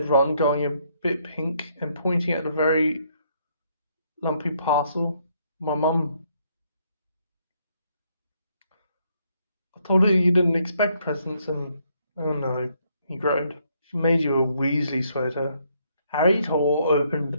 Ron, going a bit pink and pointing at a very lumpy parcel. "My mum. I told her you didn't expect presents and... oh no," he groaned. "She made you a Weasley sweater." Harry tore open the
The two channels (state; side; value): inverted; both; correlation -0.71